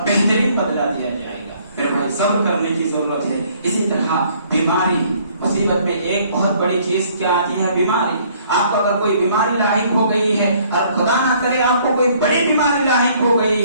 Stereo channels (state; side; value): inverted; both; correlation -0.61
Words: بہترین بدلہ دیا جائے گا. میرے بھائی صبر کرنے کی ضرورت ہے. اسی طرح بیماری مصیبت میں ایک بہت بڑی چیز کیا آتی ہے, بیماری. آپ کو اگر کوئی بیماری لاحق ہو گئی ہے اور خدا نہ کرے آپ کو کوئی بڑی بیماری لاحق ہو